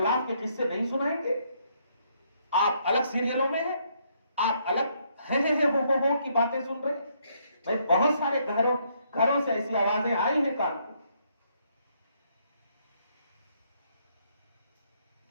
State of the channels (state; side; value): inverted; both; correlation -0.72